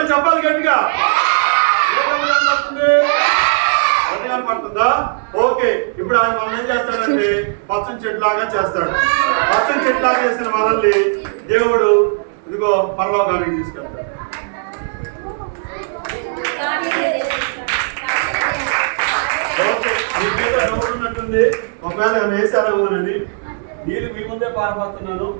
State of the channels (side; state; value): left; silent; digital silence